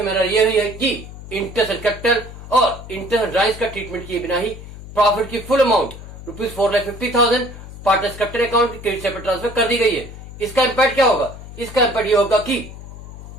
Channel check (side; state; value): left; noise; hum, 14 dB below the sound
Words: में ये हुई है कि इंटरेस्ट एंड कैपिटल और इंटरेस्ट एंड ड्राइंग्स का ट्रीटमेंट किए बिना ही प्रॉफिट की full amount ₹4,50,000 partners capital account के क्रेडिट साइड पर ट्रांसफर कर दी गई है। इसका इम्पैक्ट क्या होगा? इसका इम्पैक्ट ये होगा कि